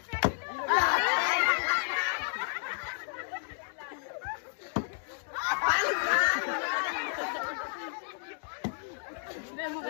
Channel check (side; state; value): right; silent; digital silence